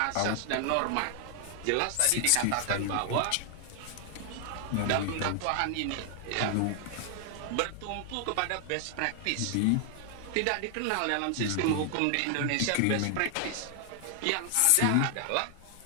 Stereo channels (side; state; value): both; different; correlation 0.00